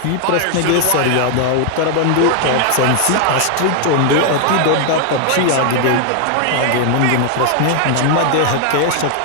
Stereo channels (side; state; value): both; different; correlation 0.00